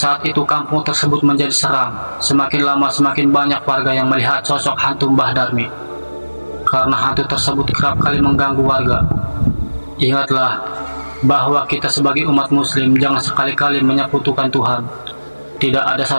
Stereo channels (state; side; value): inverted; both; correlation -1.00